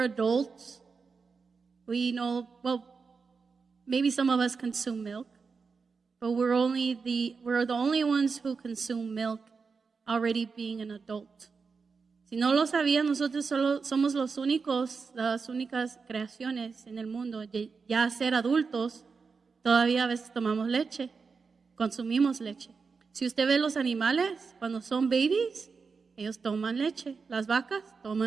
adults, we know, well, maybe some of us consume milk, but we're the only ones who consume milk already being an adult. Si no lo sabían, nosotros solo somos las únicas creaciones en el mundo. Ya ser adultos, todavía a veces tomamos leche, consumimos leche. Si usted ve los animales, cuando son babies, ellos toman leche. Las vacas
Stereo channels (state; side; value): quieter; left; 5.0 dB